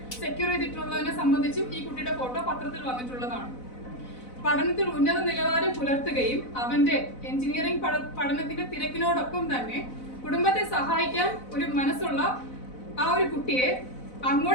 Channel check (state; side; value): late; right; 4.0 ms